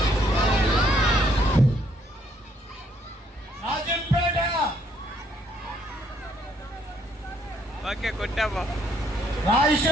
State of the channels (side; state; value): both; normal; correlation 0.69